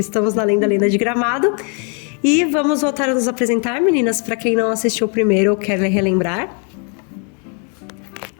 Estamos na Lenda de Gramado e vamos voltar a nos apresentar, meninas, para quem não assistiu o primeiro ou quer relembrar.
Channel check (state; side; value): quieter; right; 38.6 dB